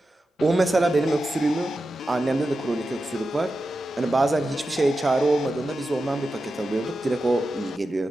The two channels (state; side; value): normal; both; correlation 0.91